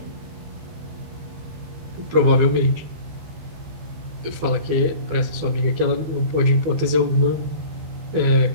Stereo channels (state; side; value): late; left; 12 ms